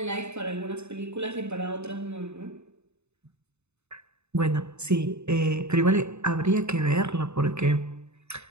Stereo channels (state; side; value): late; left; 0.81 ms